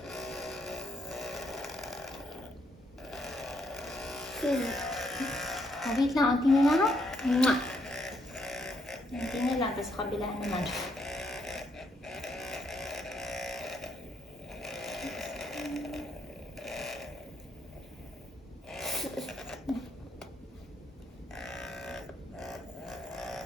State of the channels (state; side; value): normal; both; correlation 0.74